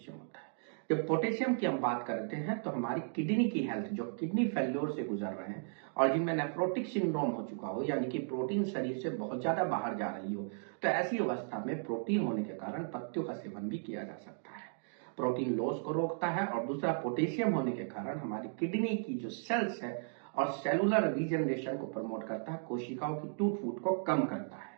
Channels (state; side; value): silent; left; digital silence